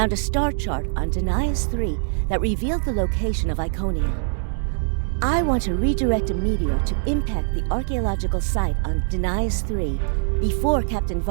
a star chart on Denias 3 that revealed the location of Iconia. I want to redirect a meteor to impact the archaeological site on Denias 3 before Captain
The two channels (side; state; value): left; silent; digital silence